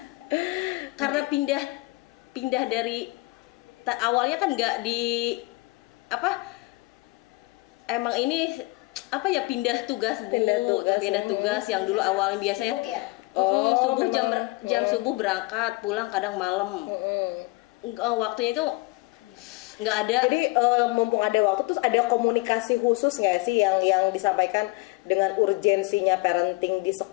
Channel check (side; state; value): right; quieter; 23.7 dB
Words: karena pindah dari awalnya kan nggak di emang ini pindah tugas Bu, pindah tugas yang dulu awalnya biasanya Sibuk ya? subuh jam subuh berangkat, pulang kadang malam. Waktunya itu nggak ada. Jadi mumpung ada waktu, terus ada komunikasi khusus nggak sih yang disampaikan dengan urgensinya parenting di